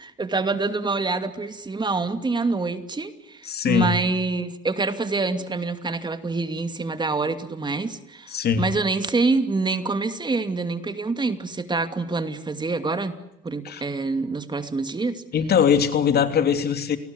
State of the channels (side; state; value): both; normal; correlation 0.48